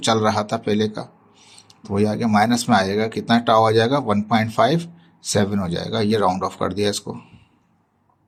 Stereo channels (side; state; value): both; identical; correlation 1.00